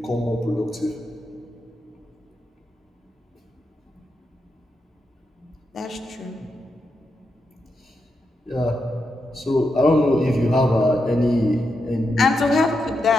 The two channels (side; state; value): both; normal; correlation 0.85